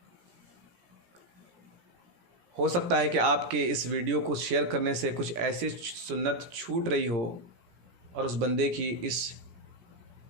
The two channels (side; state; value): left; late; 17 ms